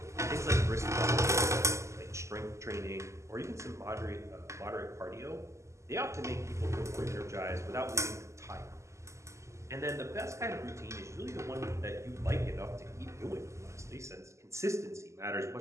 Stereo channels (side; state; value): left; late; 0.14 ms